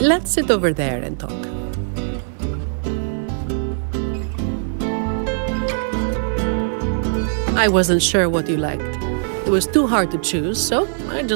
sit over there and talk. I wasn't sure what you liked. It was too hard to choose, so I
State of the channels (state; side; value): silent; left; 57 dB below the other